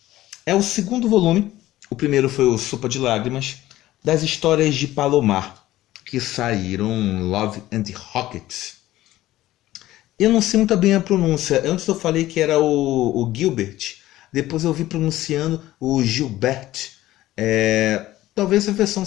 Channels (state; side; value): quieter; right; 15.4 dB